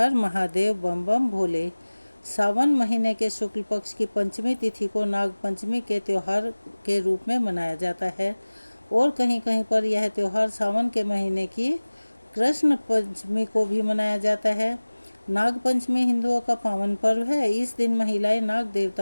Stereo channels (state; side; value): inverted; both; correlation -1.00